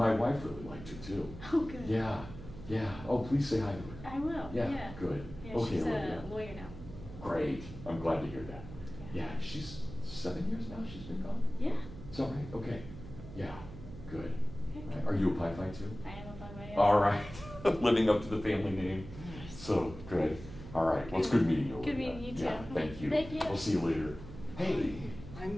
wife really liked her too. Oh, good. Yeah, yeah. Oh, please say hi to her. I will. Yeah, good. Yeah, Okay, she's Olivia. a lawyer now. Great. I'm glad to hear that. Yeah. Yeah, she's 7 years now she's been gone? Yeah. Is that right? Okay. Yeah, good. Okay. Right. Are you a Pi Phi too? I am a fun way. All right. Living up to the family name. So good. All right. Well, it's good meeting you. Good Olivia. meeting you too. Yeah, thank you. Thank you. We'll see you later. Hey.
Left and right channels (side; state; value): right; noise; hum, 13 dB below the sound